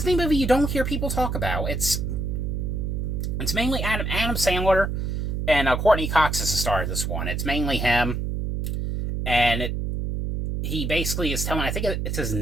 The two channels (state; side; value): noise; right; hum, 2 dB below the sound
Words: movie you don't hear people talk about. It's mainly Adam Sandler, and Courtney Cox is the star of this one. It's mainly him, and he basically is telling, I think it's his